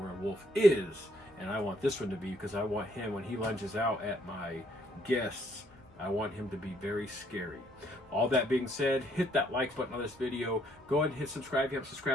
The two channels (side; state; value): both; normal; correlation 0.68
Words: werewolf is. And I want this one to be, because I want him, when he lunges out at my guests, I want him to be very scary. All that being said, hit that like button on this video. Go ahead and hit subscribe if you haven't